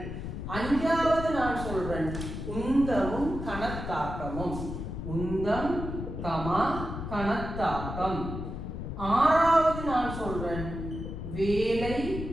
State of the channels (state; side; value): noise; left; rumble, 6 dB below the sound